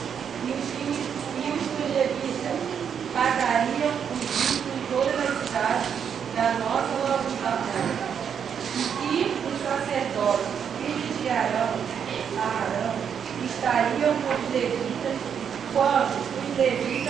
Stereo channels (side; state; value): left; quieter; 7.7 dB